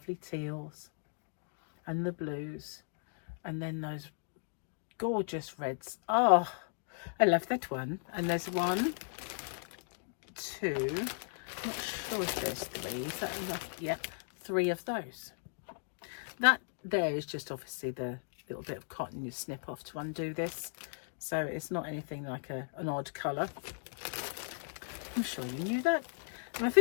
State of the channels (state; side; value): silent; right; digital silence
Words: teals and the blues, and then those gorgeous reds. Oh, I love that one. And there's 1, 2, I'm not sure if there's 3. Is that enough? Yep, 3 of those. That there is just obviously the little bit of cotton you snip off to undo this, so it's not anything like an odd colour. I'm sure you knew that. And I